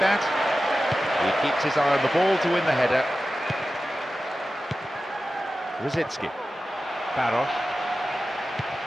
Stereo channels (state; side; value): normal; both; correlation 0.94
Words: He keeps his eye on the ball to win the header. Rosicki. Barros.